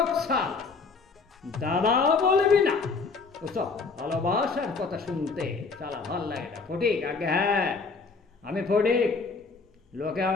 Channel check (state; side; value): quieter; right; 4.5 dB